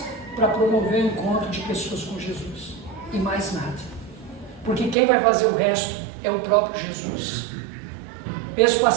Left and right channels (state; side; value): drops out; left; at 5.0 s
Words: para promover o encontro de pessoas com Jesus, e mais nada, porque quem vai fazer o resto é o próprio Jesus. Mês